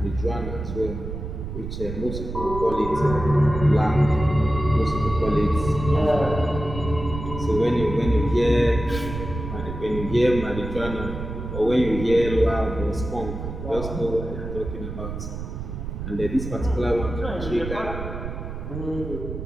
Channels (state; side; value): noise; right; rumble, 7 dB below the sound